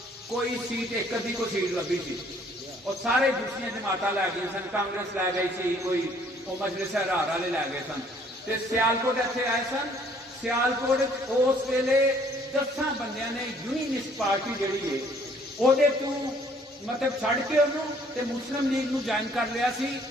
ਕੋਈ ਸੀਟ ਇੱਕ ਅੱਧੀ ਕੋ ਸੀਟ ਲੱਭੀ ਸੀ ਔਰ ਸਾਰੇ ਦੂਸਰੀਆਂ ਜਮਾਤਾਂ ਲੈ ਗਈਆਂ ਸਨ ਕਾਂਗਰਸ ਲੈ ਗਈ ਸੀ ਕੋਈ ਉਹ ਮਜਲਿਸ ਹਰਾਰ ਵਾਲੇ ਲੈ ਗਏ ਸਨ ਤੇ ਸਿਆਲਕੋਟ ਇੱਥੇ ਆਏ ਸਨ ਸਿਆਲਕੋਟ ਉਸ ਵੇਲੇ 10 ਬੰਦਿਆਂ ਨੇ ਯੂਨੀਅਨਿਸਟ ਪਾਰਟੀ ਜਿਹੜੀ ਹੈ ਉਹਦੇ ਤੋਂ ਮਤਲਬ ਛੱਡ ਕੇ ਉਹਨੂੰ ਤੇ ਮੁਸਲਿਮ ਲੀਗ ਨੂੰ ਜੁਆਇਨ ਕਰ ਲਿਆ ਸੀ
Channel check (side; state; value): both; normal; correlation 0.61